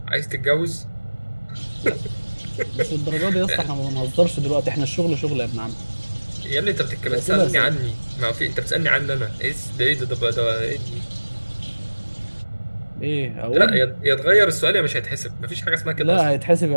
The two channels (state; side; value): inverted; both; correlation -1.00